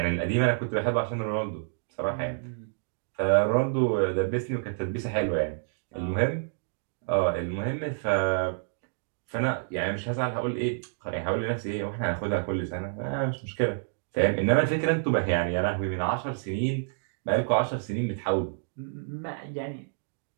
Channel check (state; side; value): silent; left; digital silence